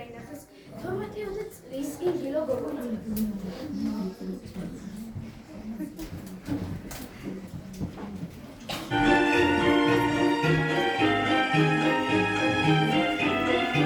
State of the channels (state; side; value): identical; both; correlation 1.00